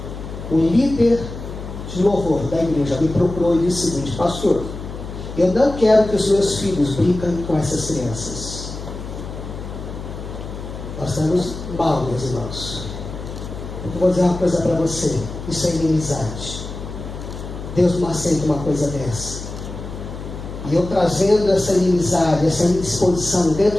O líder de louvor da igreja me procurou e disse o seguinte: pastor, eu não quero que os meus filhos brinquem com essas crianças. Nós estamos mal, meus irmãos. Eu vou dizer uma coisa para você: isso é inimizade. Deus não aceita uma coisa dessa. E eu trazendo essa inimizade, essa indisposição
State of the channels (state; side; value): noise; left; hum, 10 dB below the sound